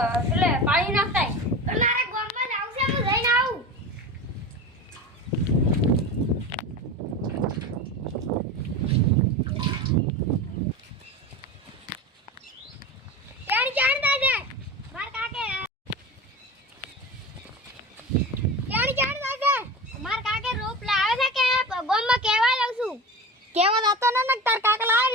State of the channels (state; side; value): normal; both; correlation 0.29